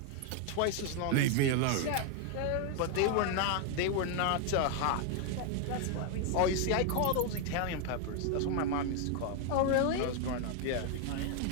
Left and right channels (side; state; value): both; different; correlation 0.01